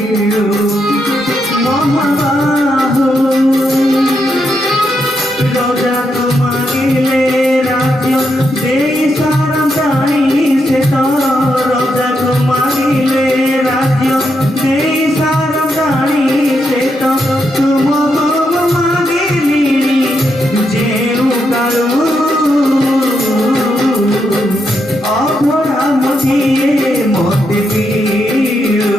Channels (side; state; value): both; normal; correlation 0.81